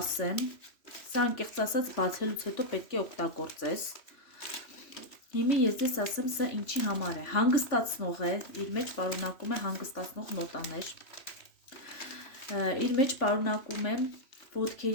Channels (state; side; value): late; right; 3.5 ms